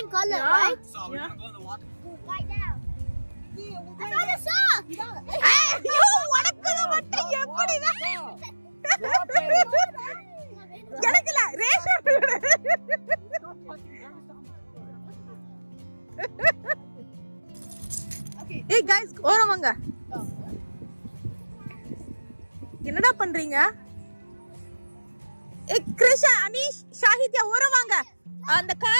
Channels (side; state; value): both; inverted; correlation -1.00